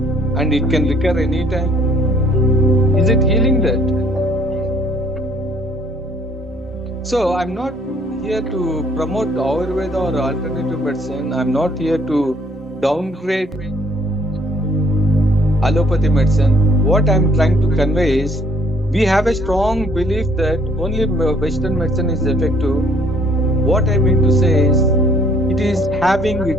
and it can recur anytime. Is it healing that? So I'm not here to promote Ayurveda or alternative medicine. I'm not here to downgrade allopathy medicine. What I'm trying to convey is, we have a strong belief that only Western medicine is effective. What I mean to say is, it is having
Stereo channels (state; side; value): normal; both; correlation 0.61